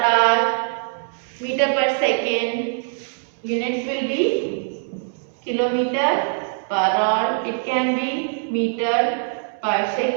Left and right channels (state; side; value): silent; left; digital silence